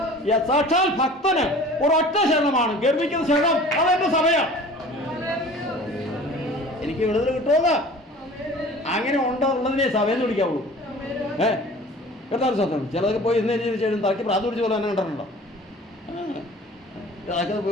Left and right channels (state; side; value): normal; both; correlation 0.44